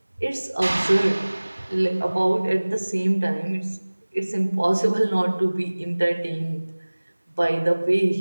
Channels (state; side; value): inverted; both; correlation -1.00